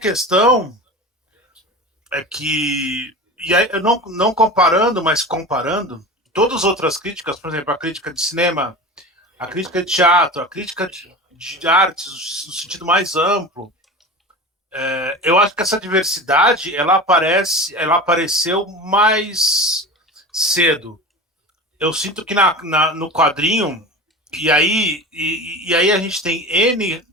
é que, e aí, eu não comparando, mas comparando, todas as outras críticas, por exemplo, a crítica de cinema, a crítica de teatro, a crítica de artes no sentido mais amplo, eu acho que essa diversidade ela apareceu mais cedo. Eu sinto que no quadrinho, e aí a gente tem N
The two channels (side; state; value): both; normal; correlation 0.32